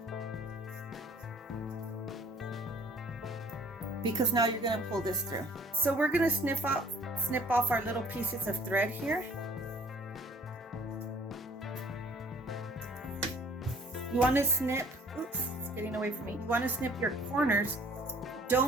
Because now you're going to pull this through. So we're going to snip off our little pieces of thread here. You want to snip, oops, it's getting away from me. You want to snip your corners.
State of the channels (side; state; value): both; normal; correlation 0.54